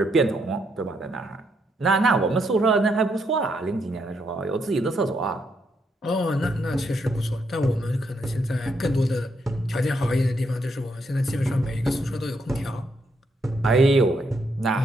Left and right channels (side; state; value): both; normal; correlation 0.76